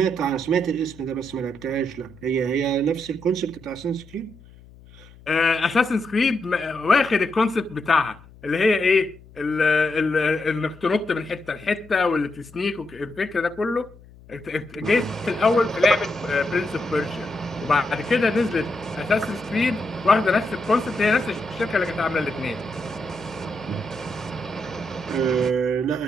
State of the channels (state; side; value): noise; left; hum, 23 dB below the sound